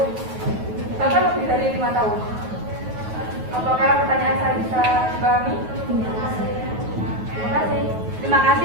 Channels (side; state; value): left; late; 9.3 ms